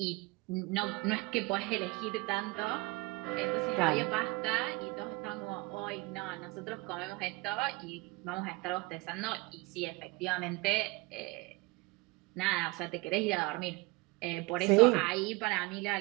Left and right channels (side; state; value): left; quieter; 24.3 dB